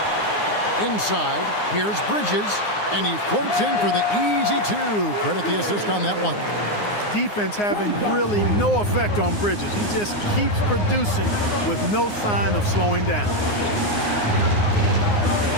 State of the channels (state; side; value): late; right; 9.7 ms